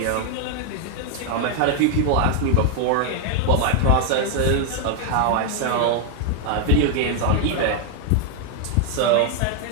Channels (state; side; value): different; both; correlation 0.00